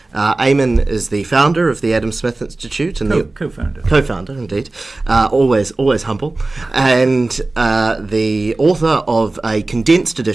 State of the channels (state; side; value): quieter; left; 3.1 dB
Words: Eamonn is the founder of the Adam Smith Institute. And Co-founder. Co-founder, indeed. Always humble. And the author of a condensed